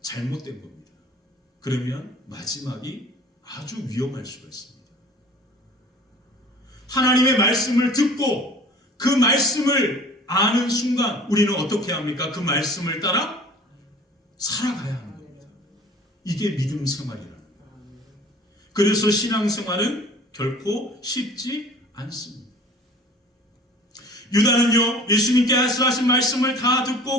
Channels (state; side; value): normal; both; correlation 0.47